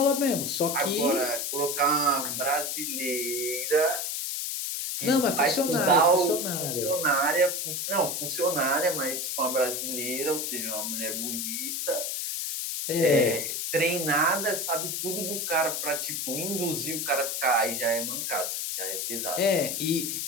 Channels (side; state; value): left; noise; hiss, 2 dB below the sound